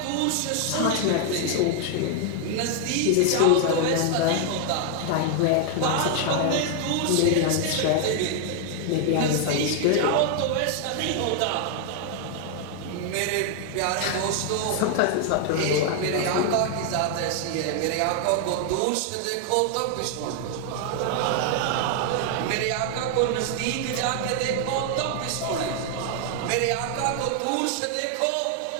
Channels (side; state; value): both; different; correlation 0.00